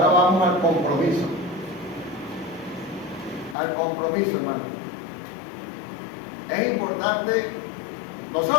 vamos al compromiso. Al compromiso, hermano. Es importante,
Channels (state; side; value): drops out; right; at 3.6 s